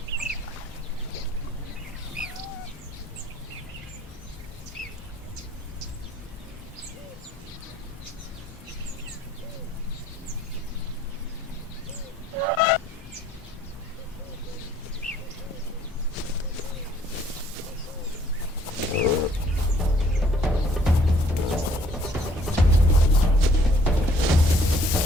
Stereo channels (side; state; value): both; normal; correlation 0.60